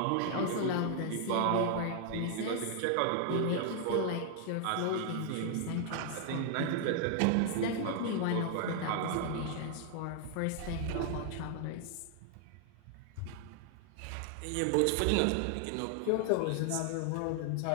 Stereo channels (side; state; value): both; different; correlation 0.00